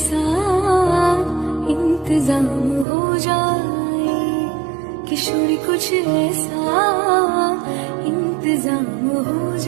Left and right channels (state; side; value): drops out; left; at 2.9 s